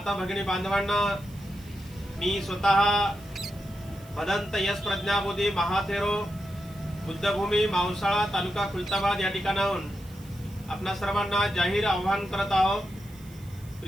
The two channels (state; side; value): noise; right; hiss, 23 dB below the sound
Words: भगिनी बांधवांना मी स्वतः भदंत यश प्रज्ञाबोधी महाथेरो बुद्धभूमी मावसाळा तालुका खुलताबाद या ठिकाणाहून आपणा सर्वांना जाहीर आवाहन करत आहोत।